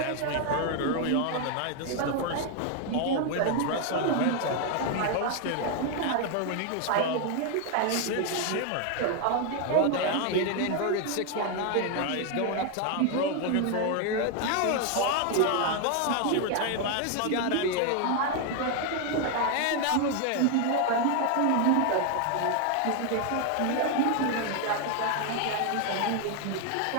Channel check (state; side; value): different; both; correlation 0.01